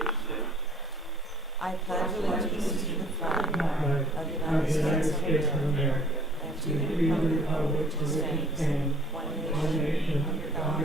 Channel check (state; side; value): normal; both; correlation 0.55